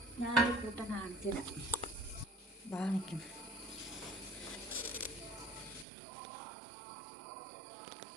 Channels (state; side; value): drops out; left; at 5.9 s